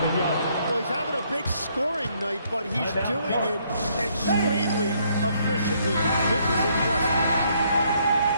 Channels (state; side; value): inverted; both; correlation -0.69